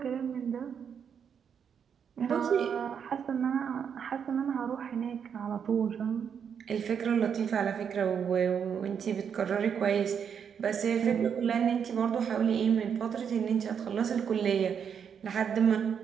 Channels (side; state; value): left; quieter; 7.4 dB